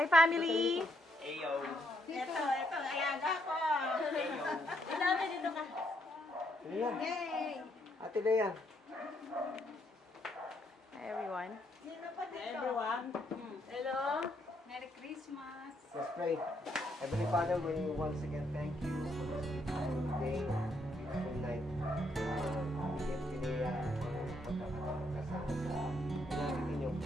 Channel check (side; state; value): both; normal; correlation 0.74